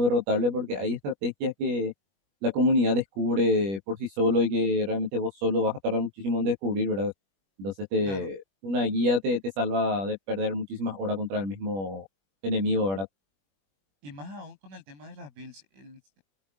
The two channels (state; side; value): late; left; 21 ms